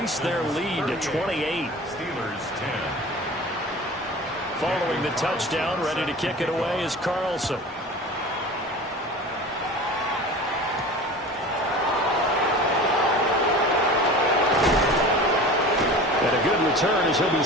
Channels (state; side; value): normal; both; correlation 0.37